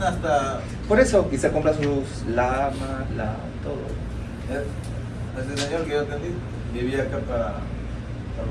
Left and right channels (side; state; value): both; identical; correlation 1.00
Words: hasta. Por eso, y se compra sus lamas, todo. Ese señor que yo atendí vivía acá para